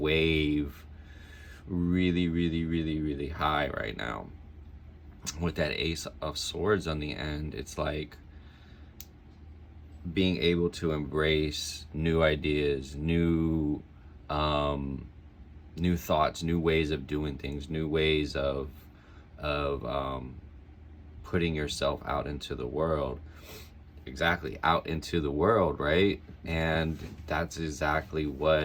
really high right now with that Ace of Swords on the end. It's like being able to embrace new ideas, new thoughts, new ways of doing things, new ways of putting yourself out into the world. Exactly, out into the world, right? And that's exactly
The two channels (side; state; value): both; identical; correlation 1.00